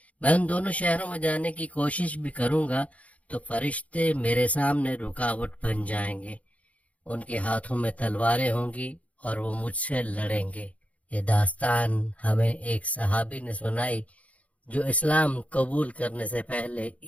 میں ان دونوں شہروں میں جانے کی کوشش بھی کروں گا تو فرشتے میرے سامنے رکاوٹ بن جائیں گے. ان کے ہاتھوں میں تلواریں ہوں گی اور وہ مجھ سے لڑیں گے. یہ داستان ہمیں ایک صحابی نے سنائی جو اسلام قبول کرنے سے پہلے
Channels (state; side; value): late; right; 0.067 ms